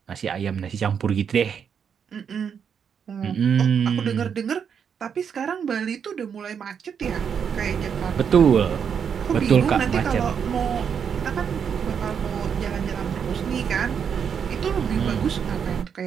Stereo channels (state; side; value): quieter; left; 7.3 dB